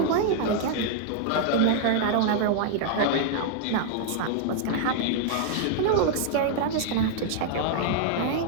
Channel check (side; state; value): both; different; correlation -0.01